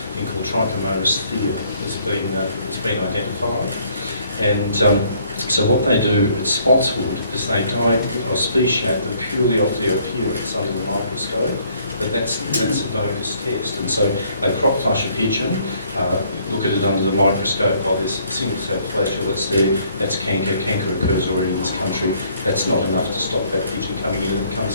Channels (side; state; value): both; inverted; correlation -0.63